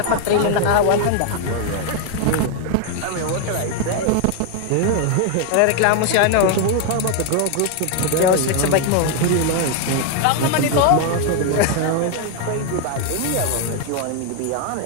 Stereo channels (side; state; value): both; different; correlation 0.00